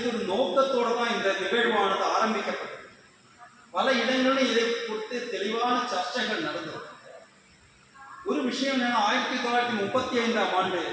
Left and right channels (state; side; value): identical; both; correlation 1.00